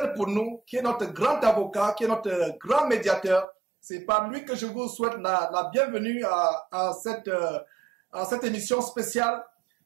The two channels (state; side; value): drops out; left; at 3.5 s